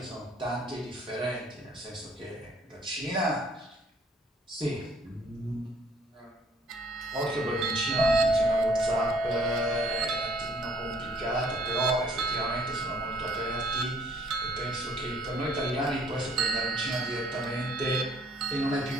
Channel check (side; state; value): both; normal; correlation 0.60